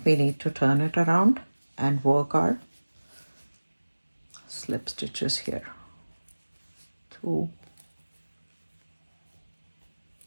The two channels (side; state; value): both; inverted; correlation -1.00